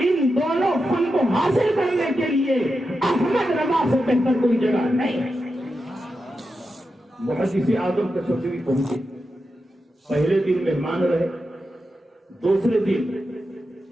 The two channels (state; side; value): normal; both; correlation 0.89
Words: ان دونوں فن کو حاصل کرنے کے لیے احمد رضا سے بہتر کوئی جگہ نہیں۔ محدث اعظم کچوجوی پہنچے، پہلے دن مہمان رہے، دوسرے دن